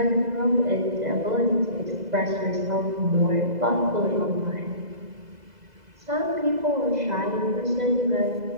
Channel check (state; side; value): late; left; 2.0 ms